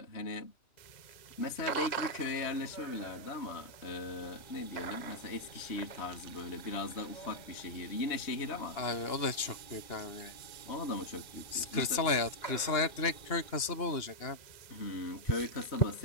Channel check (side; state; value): right; late; 2.8 ms